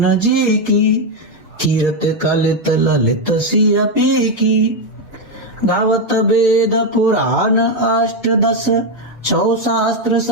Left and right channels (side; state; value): both; normal; correlation 0.05